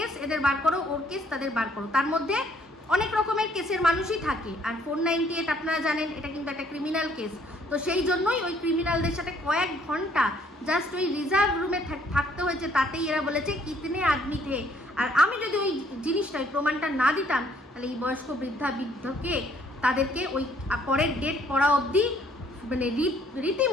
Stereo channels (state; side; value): normal; both; correlation 0.64